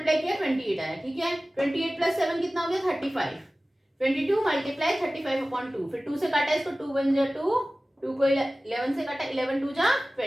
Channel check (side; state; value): both; normal; correlation 0.97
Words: किया 28 आया। ठीक है, 28 प्लस 7 कितना हो गया 35, 22 मल्टीप्लाई 35/2, फिर 2 से काटा इसको 2 1 जा 2 2 को 11 से काटा, 11 2 जा